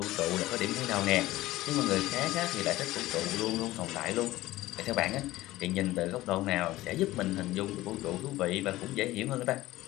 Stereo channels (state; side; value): quieter; right; 17.0 dB